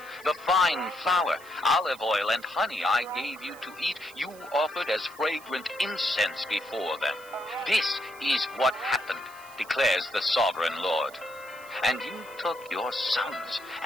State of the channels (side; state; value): right; noise; hiss, 22 dB below the sound